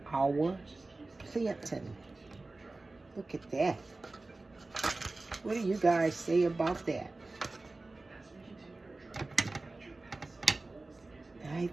our plantain. Look at that. What do you guys say about that? I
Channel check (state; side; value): quieter; left; 3.2 dB